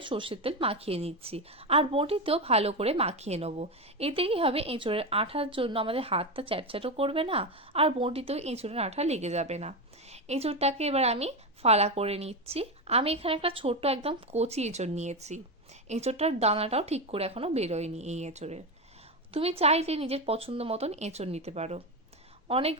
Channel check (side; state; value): both; normal; correlation 0.14